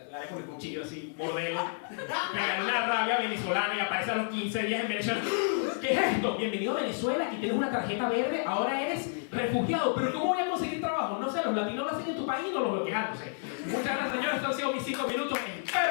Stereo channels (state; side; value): silent; right; digital silence